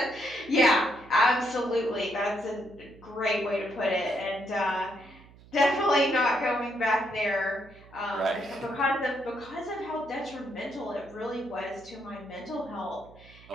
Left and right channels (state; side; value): noise; right; hum, 23 dB below the sound